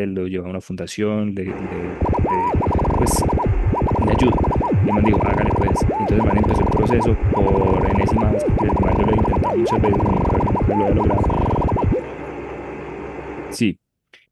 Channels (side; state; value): both; identical; correlation 1.00